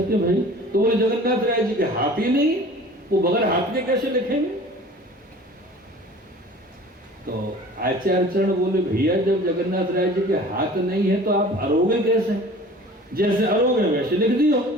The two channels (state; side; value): normal; both; correlation 0.44